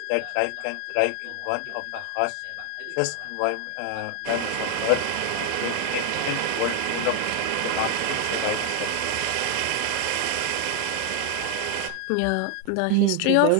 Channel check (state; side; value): different; both; correlation 0.00